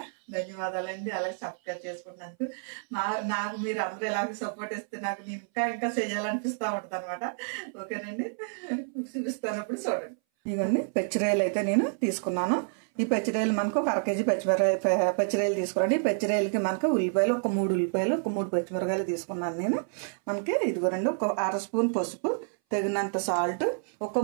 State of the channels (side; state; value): left; silent; 59 dB below the other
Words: ధన్యవాదాలండి. అలాగే సబ్స్క్రైబ్ చేసుకున్నందుకు నాకు మీరు అందరూ ఇలాగే సపోర్ట్ ఇస్తే నాకు నేను ఇంకా చేయాలనిపిస్తూ ఉంటుంది అనమాట. ఓకేనండి, చూపిస్తాను ఇప్పుడు చూడండి. ఇవన్నీ పెచ్చిరేలు అయితే నేను తీసుకున్నాను. ఈ పెచ్చిరేలు మనకు ఒక 1 కేజీ పెచ్చిరేలు తీసుకురండి. ఈ పెచ్చిరేలకి మనకు ఉల్లిపాయలు ఒక 3 ఉల్లిపాయలు ఒక 3 పచ్చిమిరకాయలు తీసుకున్నాను నేను. మనకి ఇదిగోరండి ఒక 1/2 స్పూన్ పసుపు, తగినంత సాల్ట్, ఒక